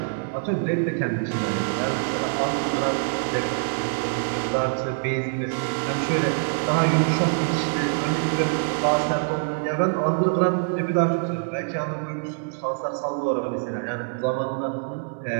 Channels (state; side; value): silent; left; 62 dB below the other